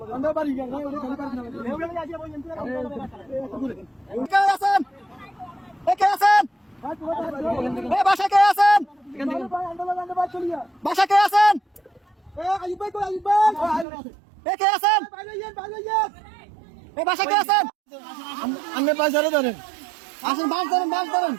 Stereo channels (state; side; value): drops out; left; at 13.9 s